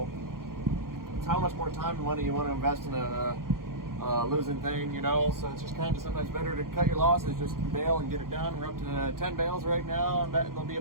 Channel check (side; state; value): left; late; 0.91 ms